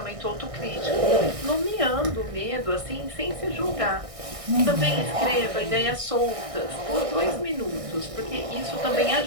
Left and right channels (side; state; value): left; late; 1.6 ms